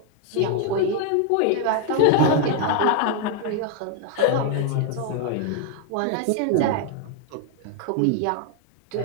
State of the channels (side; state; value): both; different; correlation 0.01